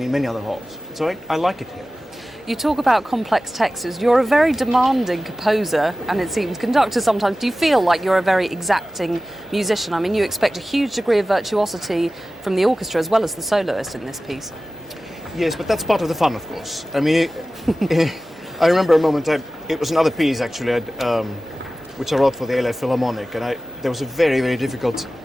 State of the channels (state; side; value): normal; both; correlation 0.96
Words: in many other halls. So I like it here. You talk about complex textures. You're a very demanding composer, and it seems conductor sometimes. Do you feel like you're a very exacting musician? I mean, you expect a huge degree of virtuosity from the orchestra as well as the soloist in this piece. Yes, but that's part of the fun, of course. I mean, I remember a moment, it was another piece actually, which I wrote for the LA Philharmonic, and there was a very, very difficult